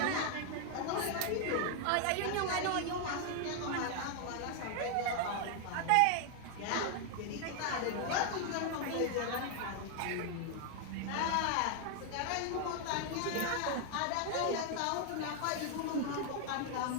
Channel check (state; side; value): different; both; correlation 0.00